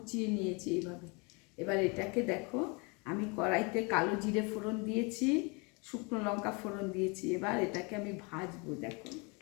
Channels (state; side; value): quieter; right; 30.7 dB